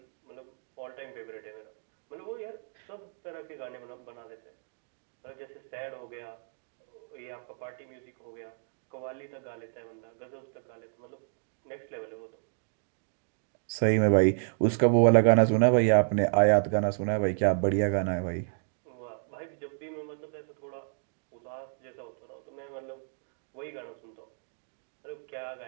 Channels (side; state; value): left; silent; digital silence